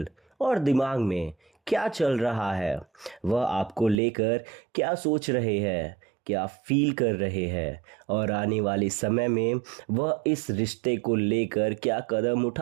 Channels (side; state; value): left; drops out; at 4.0 s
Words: और दिमाग में क्या चल रहा है, वह आपको लेकर क्या सोच रहे हैं, क्या फील कर रहे हैं और आने वाले समय में वह इस रिश्ते को लेकर क्या कदम